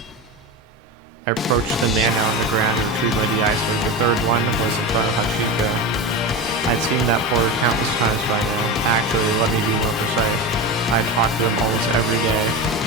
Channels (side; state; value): both; normal; correlation 0.23